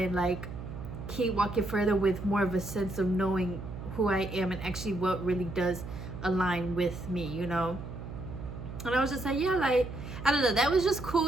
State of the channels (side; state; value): right; noise; hum, 10 dB below the sound